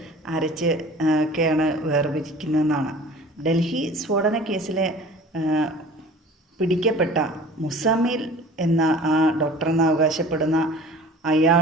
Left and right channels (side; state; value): both; normal; correlation 0.44